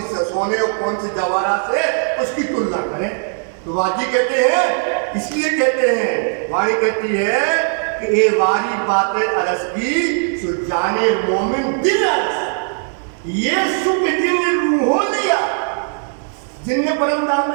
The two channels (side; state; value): left; silent; 59 dB below the other